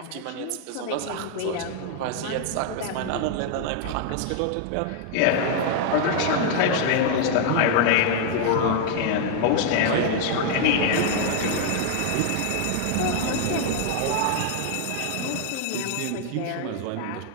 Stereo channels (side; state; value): both; different; correlation 0.00